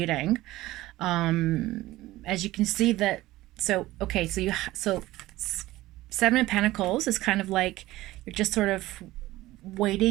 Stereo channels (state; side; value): quieter; left; 17.2 dB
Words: As you can see that, so okay, so Seven of Pentacles is kind of like you're just sort of